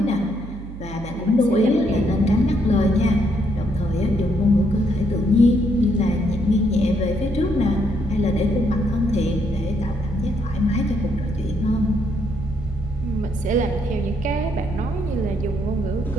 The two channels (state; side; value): noise; right; hum, 12 dB below the sound